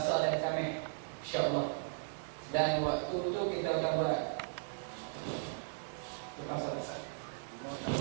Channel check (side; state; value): left; silent; 53 dB below the other